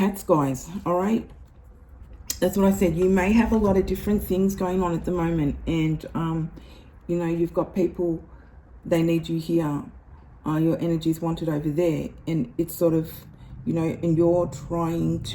guys. All right. That's what I said. You may have a lot of different things going on at the moment. And, you know, you've got people, they need you here. Your energy is wanted over there. And it's sort of, you know, and you're trying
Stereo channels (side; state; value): both; identical; correlation 1.00